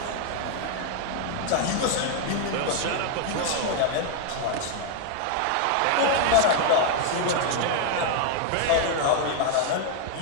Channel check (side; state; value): both; different; correlation 0.00